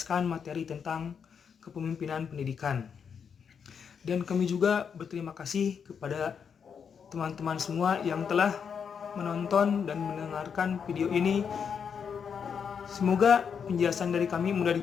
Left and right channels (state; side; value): quieter; right; 6.9 dB